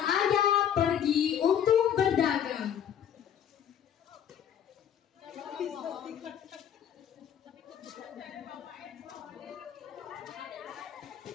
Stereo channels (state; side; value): quieter; right; 9.2 dB